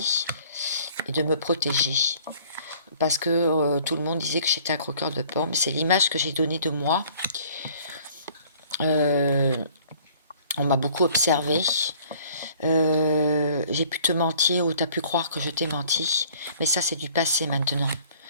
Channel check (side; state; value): both; inverted; correlation -0.55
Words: et de me protéger. Parce que tout le monde disait que j'étais un croqueur de pommes. C'est l'image que j'ai donnée de moi. On m'a beaucoup observé. J'ai pu te mentir ou tu as pu croire que je t'ai menti. Mais ça, c'est du passé maintenant.